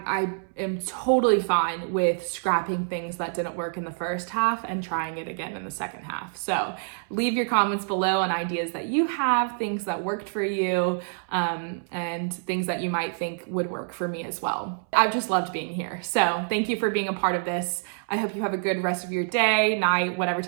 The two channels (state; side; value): silent; left; 60 dB below the other